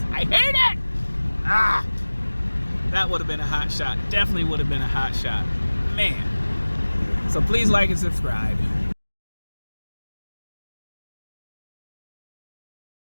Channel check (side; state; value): both; inverted; correlation -1.00